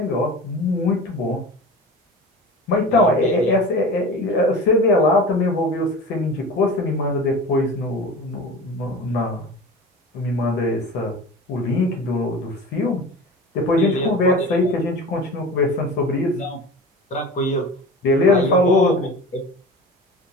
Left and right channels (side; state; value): both; normal; correlation 0.35